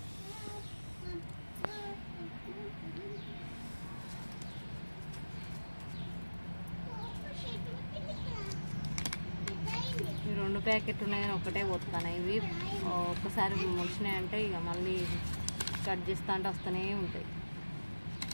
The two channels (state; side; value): inverted; both; correlation -1.00